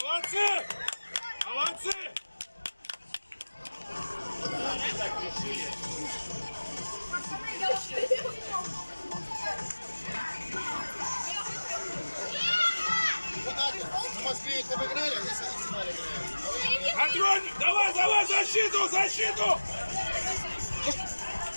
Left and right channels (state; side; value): inverted; both; correlation -1.00